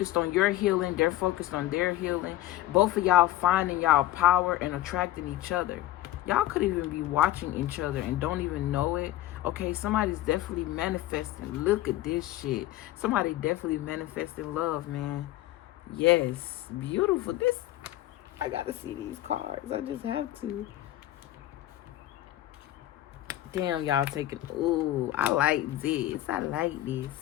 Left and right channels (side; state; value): right; quieter; 14.8 dB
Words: on your healing, they're focused on their healing. Both of y'all finding y'all power and attracting each other. Y'all could even be watching each other and don't even know it. Okay, somebody's definitely manifesting. Look at this shit. Somebody definitely manifesting love, man. Yes, beautiful. This, I gotta see these cards. I just have to. Damn, y'all taking, ooh, I like this. I like this.